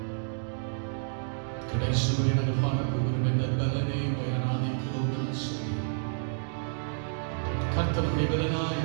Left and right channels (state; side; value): silent; left; digital silence